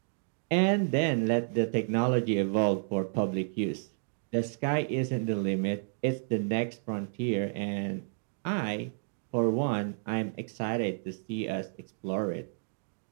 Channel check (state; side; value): silent; left; digital silence